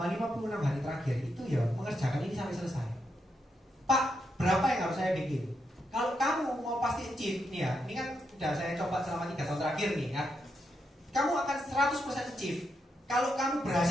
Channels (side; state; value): both; normal; correlation 0.82